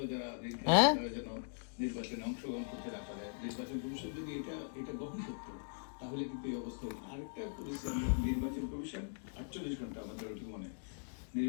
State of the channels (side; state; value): right; silent; digital silence